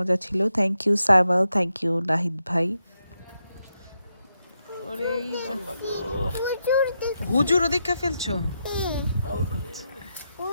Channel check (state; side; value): inverted; both; correlation -0.85